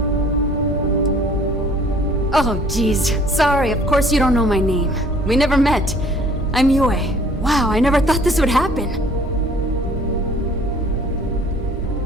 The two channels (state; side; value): normal; both; correlation 0.55